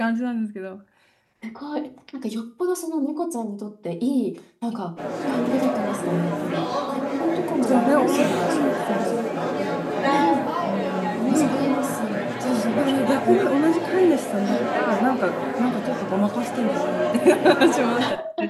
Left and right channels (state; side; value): identical; both; correlation 1.00